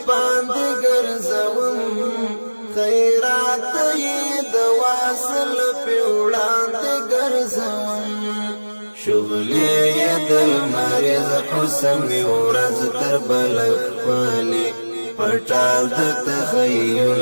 ګرځوم خیرات یې د واصل په وړاندې ګرځوم شغلې یې د لمریز حسن مې ورځ تر بله ښکلي پټال د تخیل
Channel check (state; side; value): inverted; both; correlation -1.00